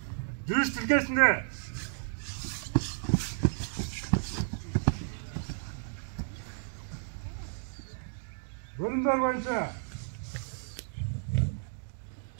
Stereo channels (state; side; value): silent; left; digital silence